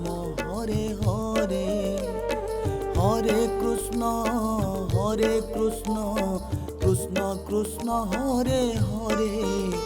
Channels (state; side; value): identical; both; correlation 1.00